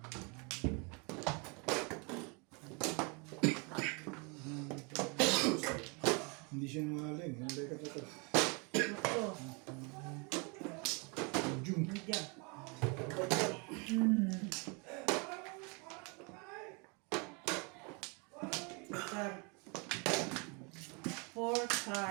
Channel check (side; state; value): left; quieter; 32.0 dB